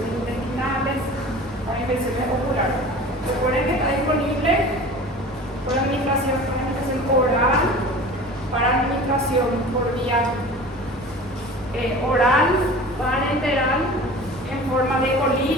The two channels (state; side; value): normal; both; correlation 0.39